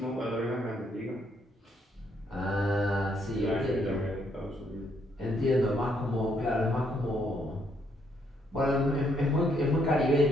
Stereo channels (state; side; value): normal; both; correlation 0.72